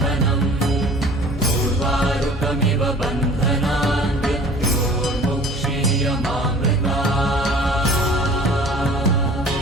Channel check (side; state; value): both; normal; correlation 0.47